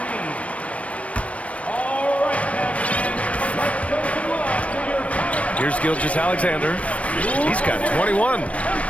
Here's Gilgeous-Alexander. He's got 21.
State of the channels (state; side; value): late; right; 0.064 ms